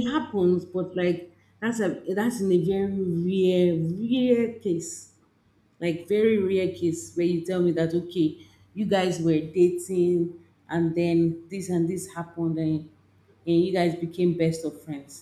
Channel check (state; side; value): identical; both; correlation 1.00